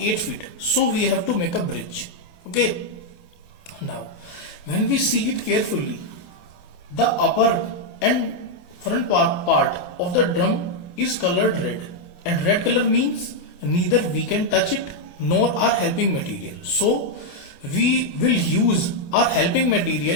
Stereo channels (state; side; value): late; right; 28 ms